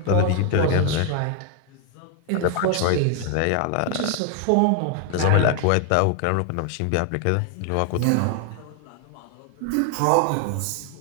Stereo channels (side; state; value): both; different; correlation 0.01